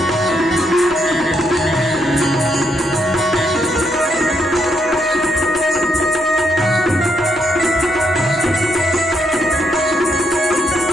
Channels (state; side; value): normal; both; correlation 0.77